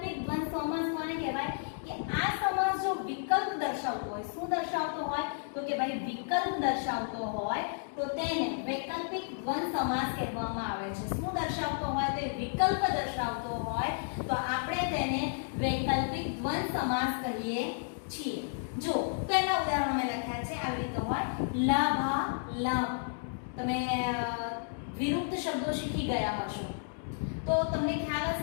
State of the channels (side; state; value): right; silent; digital silence